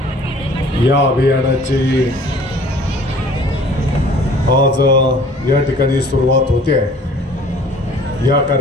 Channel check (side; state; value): both; normal; correlation 0.51